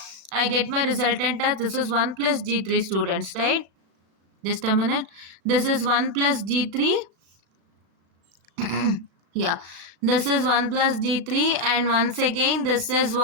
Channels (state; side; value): late; left; 35 ms